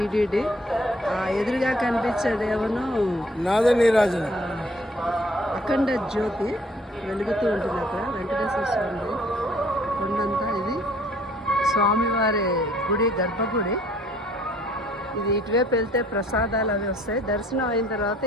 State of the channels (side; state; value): both; normal; correlation 0.59